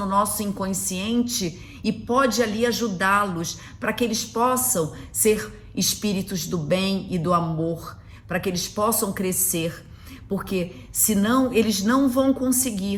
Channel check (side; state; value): both; identical; correlation 1.00